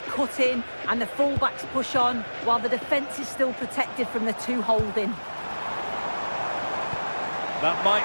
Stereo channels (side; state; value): both; inverted; correlation -1.00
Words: cut in and the fullbacks push on, while the defence is still protected from the two holding. That might